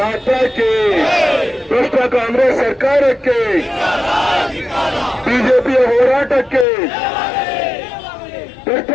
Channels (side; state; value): right; drops out; at 6.7 s